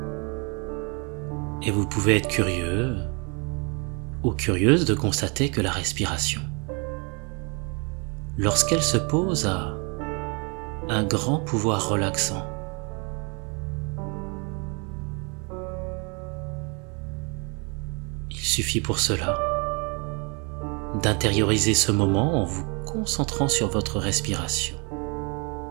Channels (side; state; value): left; quieter; 33.1 dB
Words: Et vous pouvez être curieux ou curieuse de constater que la respiration, lorsqu'elle se pose, a un grand pouvoir relaxant. Il suffit pour cela d'intérioriser ce moment en vous concentrant sur votre respiration.